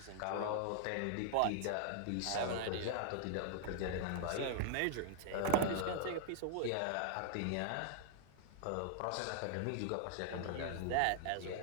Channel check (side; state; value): both; different; correlation -0.01